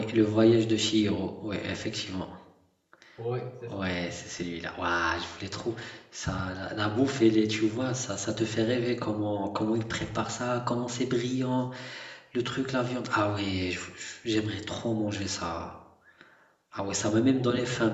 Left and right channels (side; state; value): both; identical; correlation 1.00